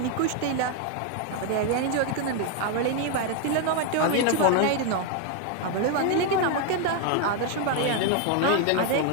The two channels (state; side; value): different; both; correlation 0.01